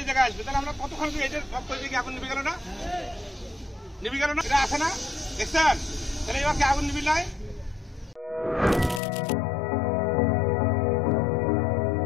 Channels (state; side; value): drops out; right; at 9.0 s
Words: জায়গায় আসবে, তাহলে আমরা কতক্ষণ আগুন নিভে গেল না? এটা আছে না, দেখছেন? তাহলে এবার কি আগুন নিবিল নাই?